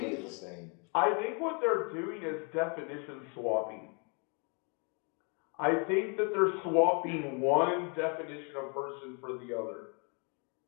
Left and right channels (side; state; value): right; quieter; 36.1 dB